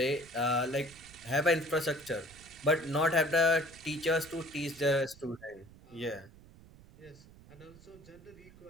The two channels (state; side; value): noise; right; rumble, 22 dB below the sound